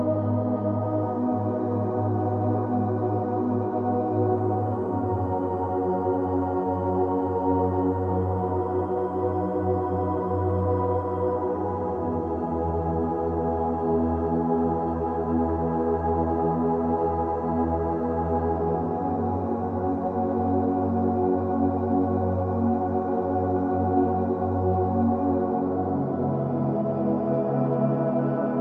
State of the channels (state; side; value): identical; both; correlation 1.00